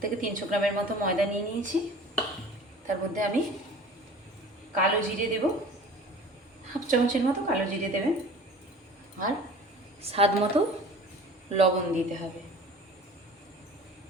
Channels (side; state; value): both; normal; correlation 0.43